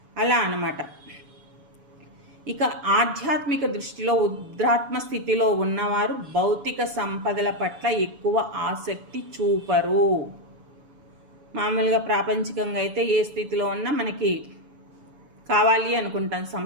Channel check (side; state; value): left; late; 7.0 ms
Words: అలా అన్నమాట. ఇక ఆధ్యాత్మిక దృష్టిలో ఉద్రాత్మ స్థితిలో ఉన్నవారు భౌతిక సంపదల పట్ల ఎక్కువ ఆసక్తి చూపరు. మామూలుగా ప్రాపంచికంగా అయితే ఏ స్థితిలో ఉన్నా మనకి కావాలి అనుకుంటాం